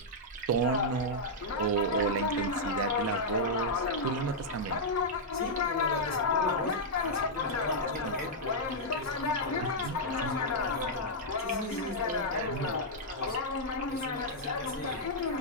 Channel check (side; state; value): both; normal; correlation -0.06